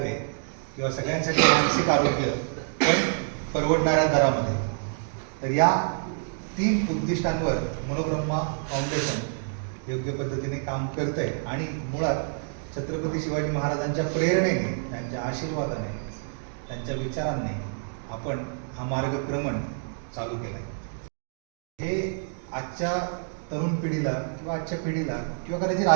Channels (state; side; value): silent; left; digital silence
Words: किंवा सगळ्यांसाठी मानसिक आरोग्य पण परवडणाऱ्या दरामध्ये. तर या 3 उद्दिष्टांवर मनोब्रह्मा फाउंडेशन योग्य पद्धतीने काम करत आहे आणि मुळात छत्रपती शिवाजी महाराजांच्या प्रेरणेने, त्यांच्या आशीर्वादाने, त्यांच्या विचारांनी आपण हा मार्गक्रमण चालू केला आहे. हे आजच्या तरुण पिढीला किंवा आजच्या पिढीला किंवा कदाचित